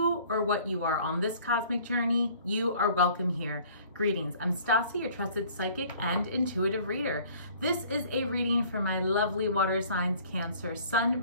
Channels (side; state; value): both; inverted; correlation -0.52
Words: or what you are on this cosmic journey, you are welcome here. Greetings, I'm Stasi, your trusted psychic and intuitive reader. This is a reading for my lovely water signs Cancer, Sun,